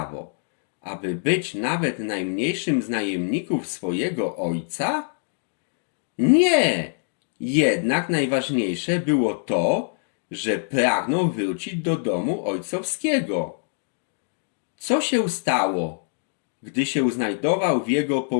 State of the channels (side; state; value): right; silent; digital silence